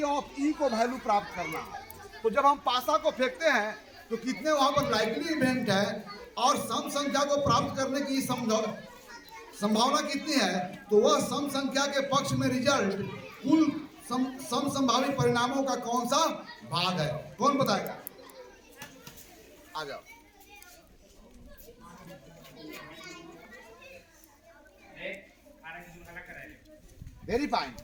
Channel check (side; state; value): both; identical; correlation 1.00